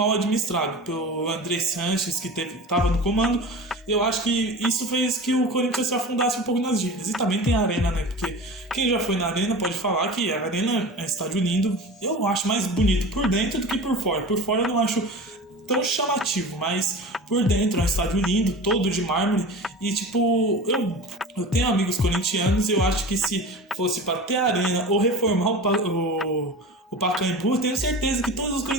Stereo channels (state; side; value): normal; both; correlation 0.33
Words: administrado pelo André Sanches, que estava no comando. Eu acho que isso fez que o Corinthians se afundasse um pouco nas dívidas. E também tem a Arena, né? Porque quem já foi na Arena pode falar que a Arena é um estádio lindo. Eu acho mais bonito por dentro do que por fora. Por fora eu não acho tão chamativo, mas por dentro é um estádio lindo, todo de mármore. E tipo, eu tenho amigos corintianos e eu acho que se fosse para ter a Arena ou reformar o Pacaembu, eu tenho certeza que todos os